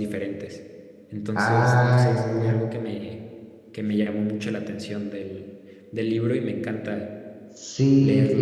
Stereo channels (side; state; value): both; identical; correlation 1.00